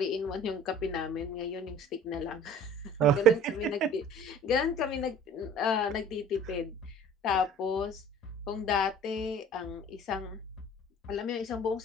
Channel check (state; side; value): normal; both; correlation 0.47